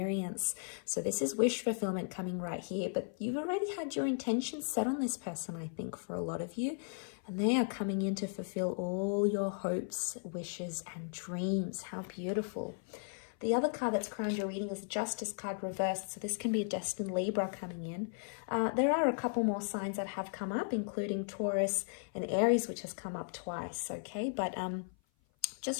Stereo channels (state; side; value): silent; right; 54 dB below the other